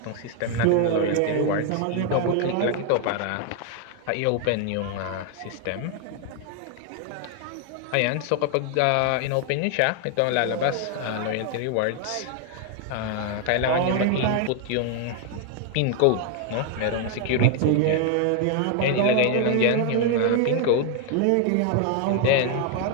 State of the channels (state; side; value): different; both; correlation 0.00